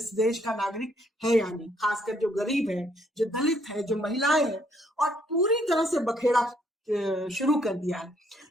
देश का नागरिक है या नहीं, खासकर जो गरीब है, जो दलित है, जो महिलाएं हैं, और पूरी तरह से बखेड़ा शुरू कर दिया है।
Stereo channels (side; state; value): both; normal; correlation 0.68